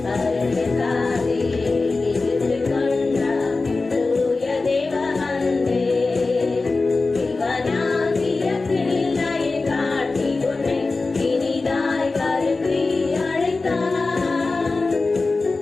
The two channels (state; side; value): quieter; right; 3.7 dB